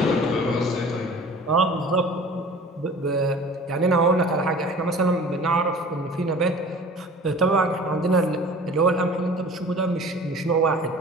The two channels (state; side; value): normal; both; correlation 0.43